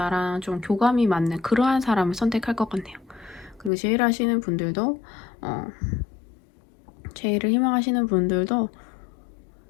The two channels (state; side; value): drops out; right; at 3.7 s